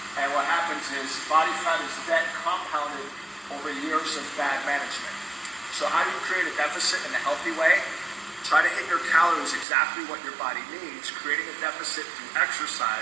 and what happens is body fat is debt compounded over years of bad management. So how do you create a deficit in a healthy way? Try to hit your calories exactly what your body needs. Creating a deficit through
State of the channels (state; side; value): drops out; left; at 9.7 s